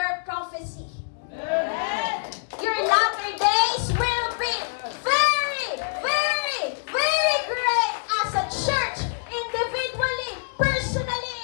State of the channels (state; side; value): silent; right; digital silence